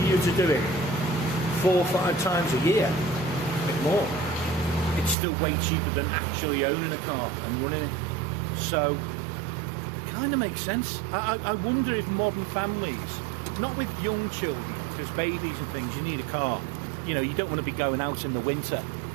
you were to do it 4 or 5 times a year, a bit more, it's still way cheaper than actually owning a car and running it. So it kind of makes sense. I wonder if modern families, not with young children, because babies and things, you need a car. You know, you don't want to be going out in the winter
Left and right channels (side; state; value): left; drops out; at 5.2 s